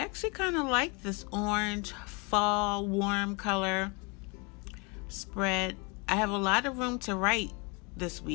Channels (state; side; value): quieter; right; 30.3 dB